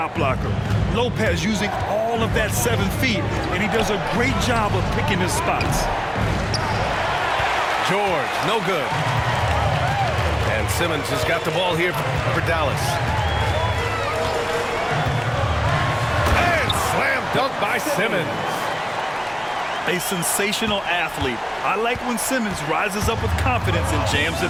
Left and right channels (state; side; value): identical; both; correlation 1.00